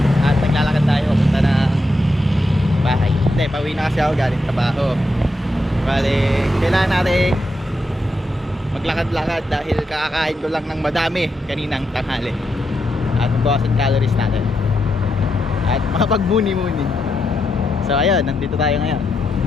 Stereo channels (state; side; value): normal; both; correlation 0.84